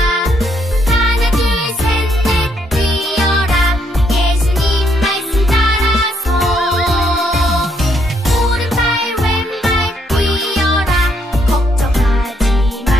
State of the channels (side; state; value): both; normal; correlation 0.73